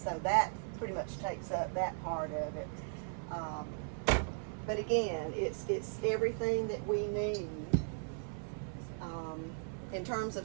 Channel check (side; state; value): left; silent; 53 dB below the other